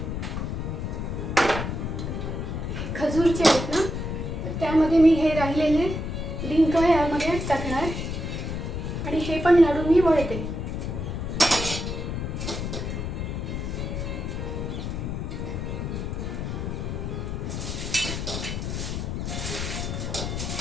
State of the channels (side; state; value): left; noise; rumble, 3 dB below the sound